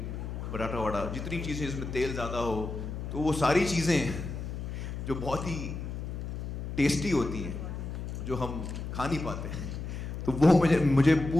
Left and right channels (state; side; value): noise; left; hum, 6 dB below the sound